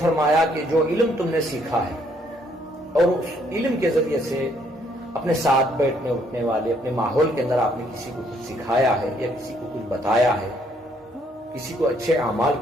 کہ جو علم تم نے سیکھا ہے اور اس علم کے ذریعے سے اپنے ساتھ بیٹھنے اٹھنے والے اپنے ماحول کے اندر آپ نے کسی کو کچھ سکھایا ہے یا کسی کو کچھ بتایا ہے، کسی کو اچھے اعمال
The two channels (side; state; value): both; normal; correlation 0.68